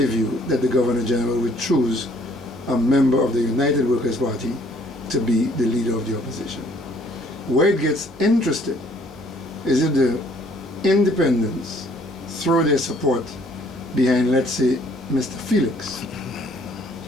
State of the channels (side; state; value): both; normal; correlation 0.61